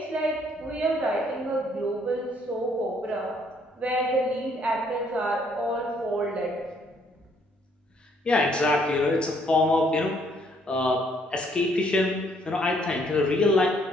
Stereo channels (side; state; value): both; normal; correlation 0.66